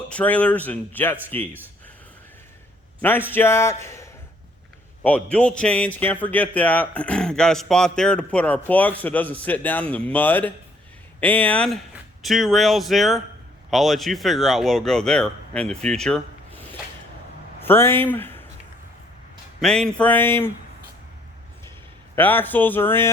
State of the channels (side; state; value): both; normal; correlation 0.64